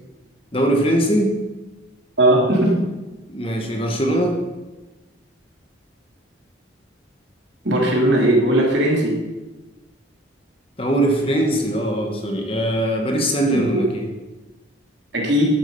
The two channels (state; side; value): normal; both; correlation 0.47